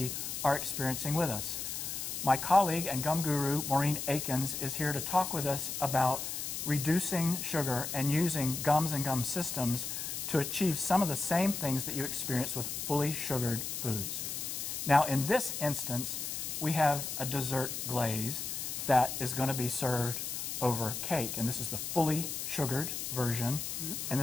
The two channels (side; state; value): left; noise; hiss, 4 dB below the sound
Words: are experiencing with us. My colleague and gum guru, Maureen Akins, is here to talk with us about reducing sugar and using gums and gum systems to achieve some of the same things that you experience with fully sugared foods. Now, in this instance, we have a dessert glaze that is going to be served over cake, and this is the fully sugared version, and